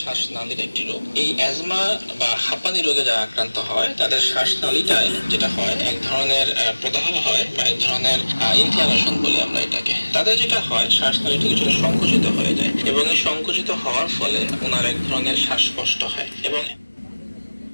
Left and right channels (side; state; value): both; inverted; correlation -1.00